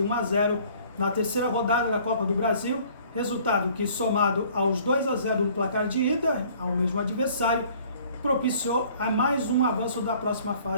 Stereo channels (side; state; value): both; inverted; correlation -0.55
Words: 1-0 na terceira rodada da Copa do Brasil, resultado que somado aos 2-0 no placar de ida, ao mesmo adversário, propiciou a mais um avanço da próxima